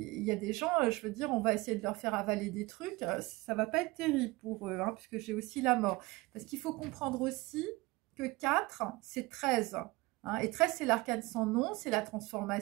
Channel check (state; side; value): quieter; left; 22.5 dB